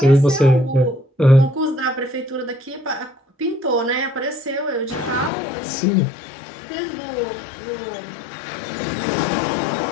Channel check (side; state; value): right; drops out; at 5.3 s